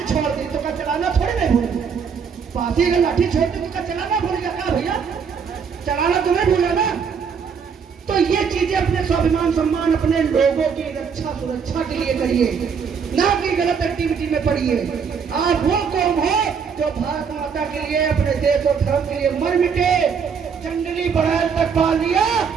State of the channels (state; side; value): quieter; left; 6.4 dB